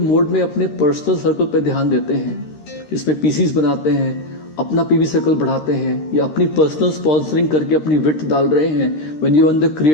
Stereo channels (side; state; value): right; late; 13 ms